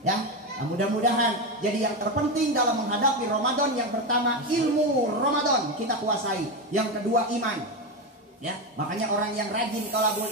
nah, mudah-mudahan jadi yang terpenting dalam menghadapi Ramadan, yang pertama ilmu Ramadan kita kuasai, yang kedua iman. Ya, makanya orang yang rajin thalabul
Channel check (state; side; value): normal; both; correlation 0.13